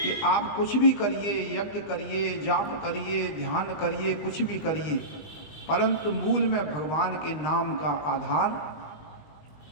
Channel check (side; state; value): right; late; 20 ms